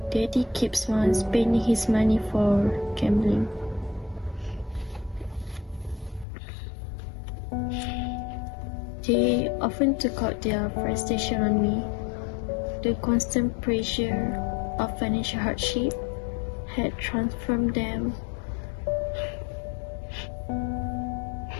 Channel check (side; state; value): right; drops out; at 6.2 s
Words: Daddy keeps on spending his money for gambling. They often took out their frustration on me. The constant pressure of financial hardship had transformed them